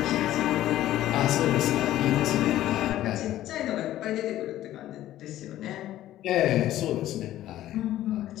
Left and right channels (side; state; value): right; quieter; 13.7 dB